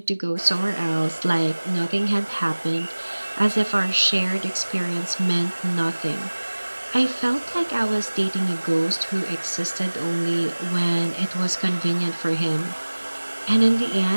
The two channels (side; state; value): both; inverted; correlation -1.00